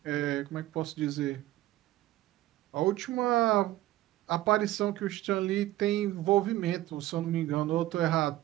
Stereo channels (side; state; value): left; quieter; 15.7 dB